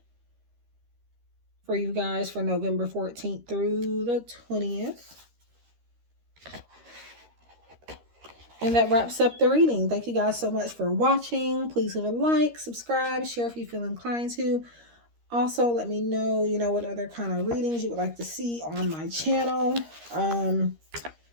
for you guys for November 14th through the 20th. And that wraps up the reading. Thank you guys so much for watching. Please leave a like, subscribe, share if you feel inclined to. Also, let me know, what other kind of readings you would like to see on my channel.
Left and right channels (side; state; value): left; late; 13 ms